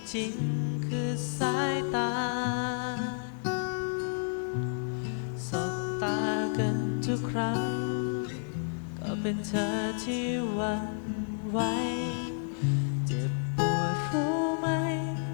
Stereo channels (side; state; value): right; silent; 57 dB below the other